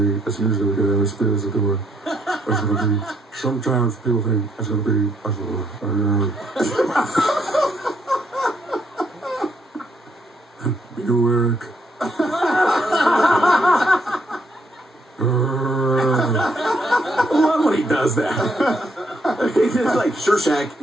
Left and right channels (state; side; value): normal; both; correlation 0.73